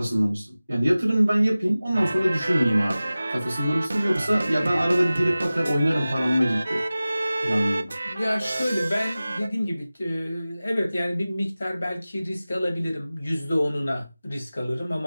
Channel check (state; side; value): inverted; both; correlation -0.97